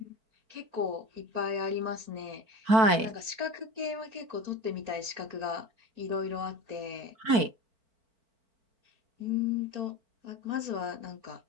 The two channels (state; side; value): late; left; 4.5 ms